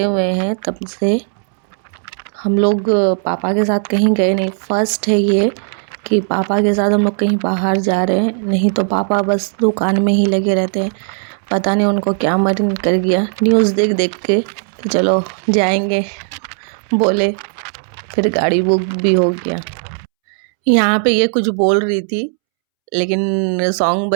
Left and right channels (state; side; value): silent; left; 69 dB below the other